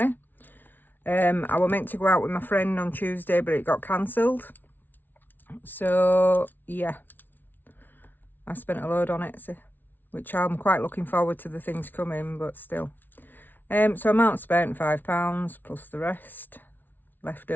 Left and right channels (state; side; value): late; right; 0.089 ms